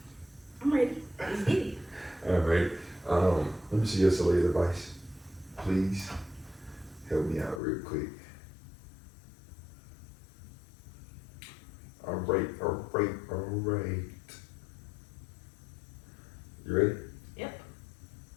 I'm ready. Let's get it. All right. Let me see your solid advice. Please help me out real quick. All right. You ready? Yep.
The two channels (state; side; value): drops out; right; at 7.6 s